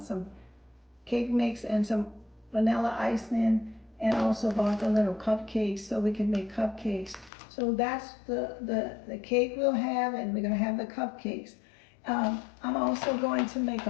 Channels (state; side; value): drops out; right; at 7.3 s